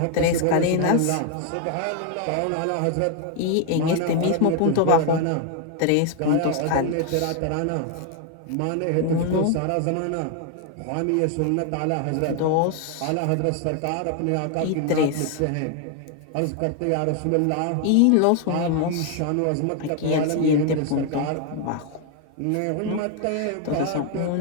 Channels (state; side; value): different; both; correlation 0.01